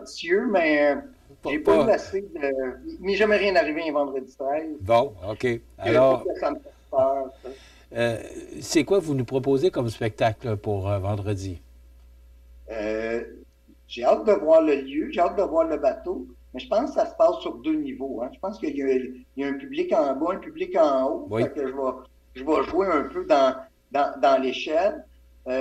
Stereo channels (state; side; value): identical; both; correlation 1.00